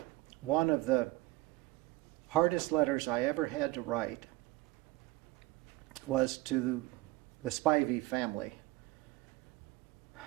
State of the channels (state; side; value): quieter; left; 19.6 dB